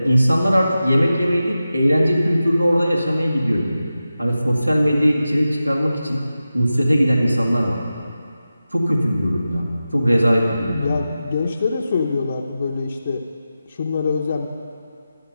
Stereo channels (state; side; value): inverted; both; correlation -0.93